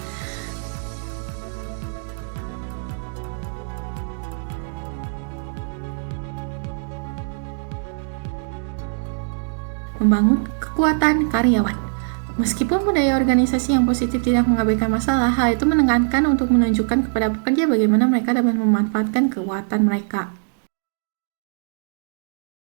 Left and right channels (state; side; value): silent; left; digital silence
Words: Membangun kekuatan karyawan. Meskipun budaya organisasi yang positif tidak mengabaikan masalah, hal itu menekankan untuk menunjukkan kepada pekerja bagaimana mereka dapat memanfaatkan kekuatan mereka.